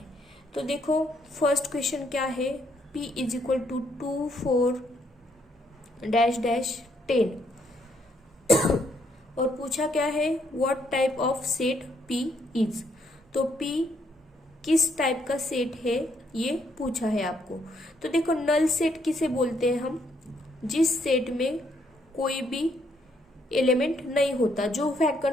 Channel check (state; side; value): normal; both; correlation 0.72